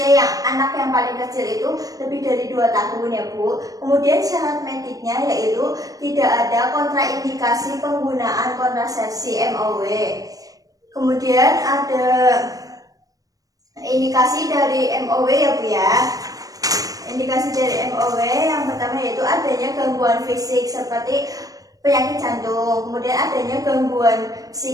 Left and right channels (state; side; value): late; left; 0.17 ms